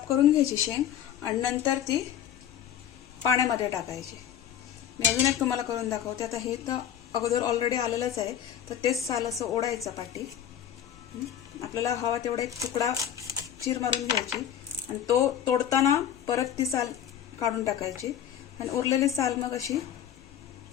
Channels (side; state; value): right; quieter; 10.0 dB